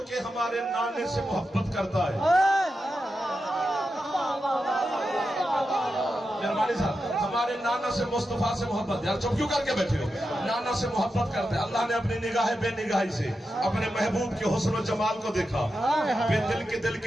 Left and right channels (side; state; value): both; normal; correlation 0.89